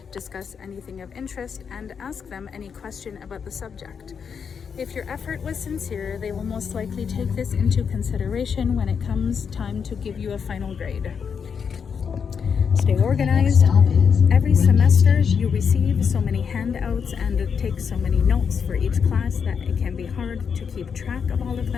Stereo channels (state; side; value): quieter; right; 6.6 dB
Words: Discuss anything of interest and ask them any question about the subject. If your effort was sincere, they will most likely take this into consideration when it comes time to give you a final grade. Stay organized. Every semester you receive so many handouts and take so many notes for each class that it can be hard to keep track of all of